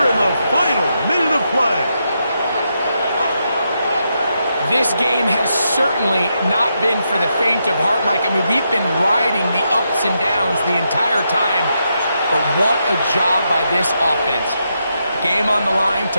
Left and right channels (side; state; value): both; inverted; correlation -0.82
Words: in the final minute of play. This game has certainly not been for the faint of heart, Mike. I mean, we've been riding the ups and downs the entire time, but what a job by this offense. Game on the line